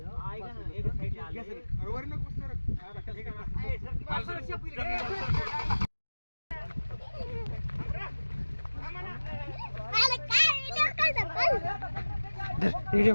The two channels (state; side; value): inverted; both; correlation -1.00